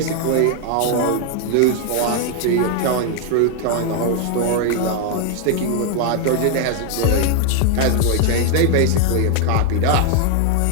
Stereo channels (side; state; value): both; different; correlation 0.00